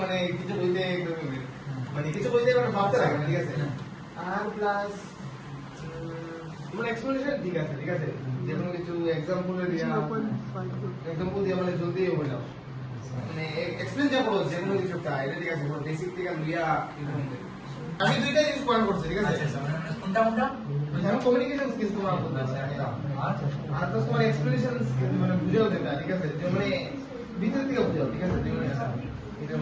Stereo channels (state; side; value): identical; both; correlation 1.00